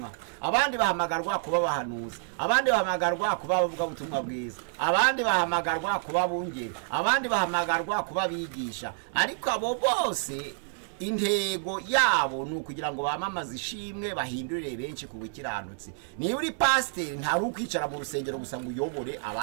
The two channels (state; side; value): silent; left; digital silence